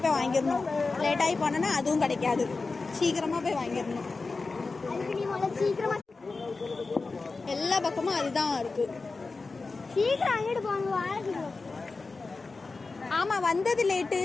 போய் வாங்கிடணும். லேட்டாகி போனோன்னா அதுவும் கிடைக்காது. சீக்கிரமாக போய் வாங்கிடணும். எல்லா பக்கமும் அதுதான் இருக்குது. சீக்கிரம் வாங்கிட்டு போங்க. ஆமாம், வந்தது லேட்டு.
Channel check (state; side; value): quieter; right; 3.9 dB